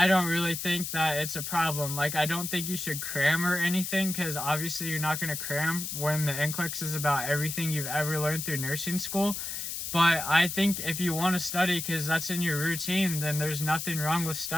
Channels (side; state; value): left; noise; hiss, 5 dB below the sound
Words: don't really think that it's a problem. Like, I don't think you should cram or anything, because obviously you're not going to cram when the Nclex is about everything you've ever learned through nursing school. But I think if you want to study because that's in your routine, then there's nothing wrong with